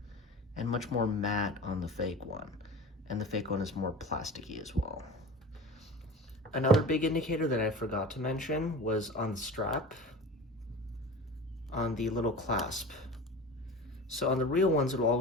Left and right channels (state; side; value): normal; both; correlation 0.34